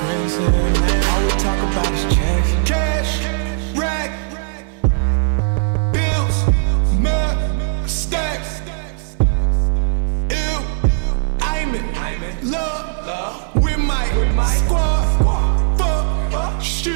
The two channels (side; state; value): left; silent; 58 dB below the other